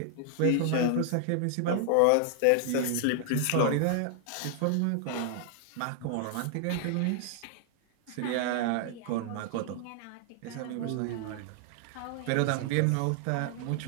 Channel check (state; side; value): different; both; correlation 0.00